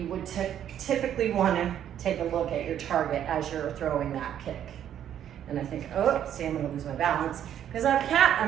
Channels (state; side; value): quieter; left; 10.2 dB